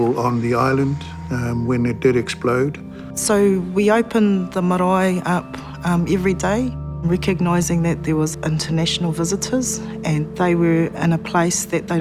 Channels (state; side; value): identical; both; correlation 1.00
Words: on the island when it did explode. So we opened the marae up every day, recognising that there was international visitors and they were in a place that they